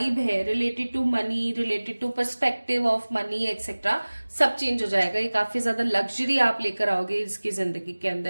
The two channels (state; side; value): inverted; both; correlation -1.00